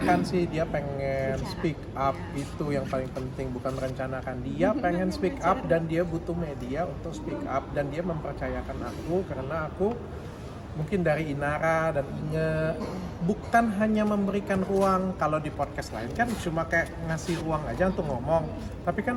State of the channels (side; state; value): both; identical; correlation 1.00